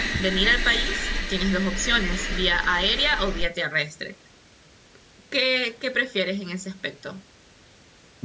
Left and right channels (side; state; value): both; identical; correlation 1.00